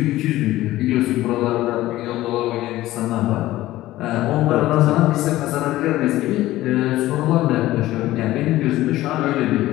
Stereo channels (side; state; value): right; quieter; 16.0 dB